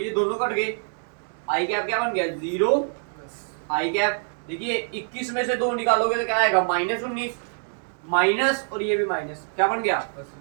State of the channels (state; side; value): silent; left; digital silence